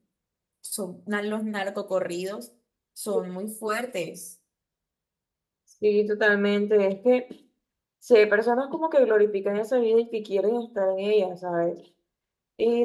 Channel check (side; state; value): both; identical; correlation 1.00